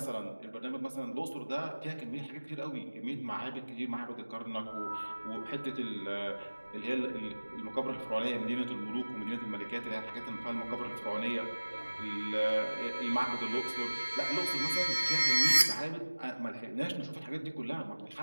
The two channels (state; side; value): inverted; both; correlation -1.00